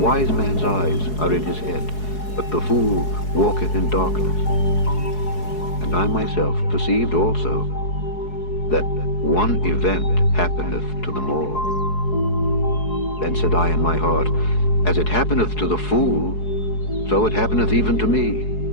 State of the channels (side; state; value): right; late; 4.7 ms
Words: man's eyes are in his head, but the fool walketh in darkness. And I myself perceived also that one event happeneth to them all. Then said I in my heart, As it happeneth to the fool, so it happeneth even to me.